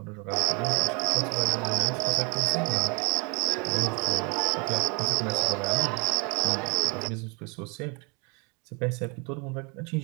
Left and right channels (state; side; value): quieter; left; 31.6 dB